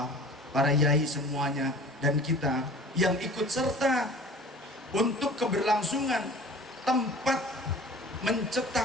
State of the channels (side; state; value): both; normal; correlation 0.43